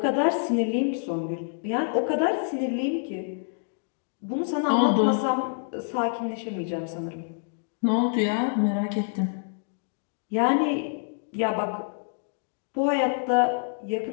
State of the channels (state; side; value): silent; right; digital silence